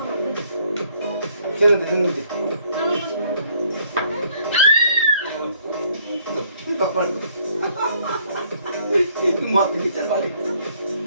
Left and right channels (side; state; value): both; inverted; correlation -0.64